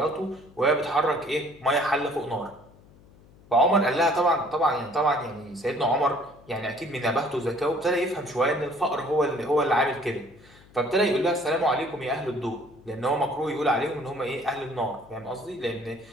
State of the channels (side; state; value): left; noise; hum, 25 dB below the sound